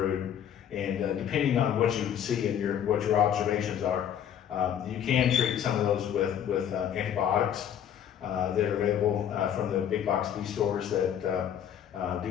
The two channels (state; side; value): quieter; right; 9.4 dB